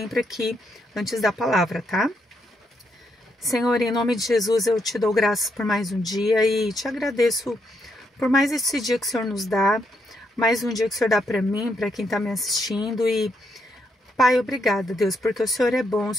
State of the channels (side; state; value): both; normal; correlation 0.77